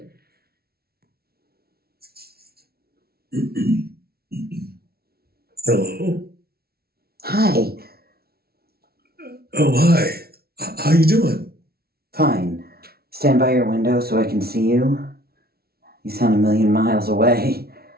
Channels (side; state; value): left; late; 0.45 ms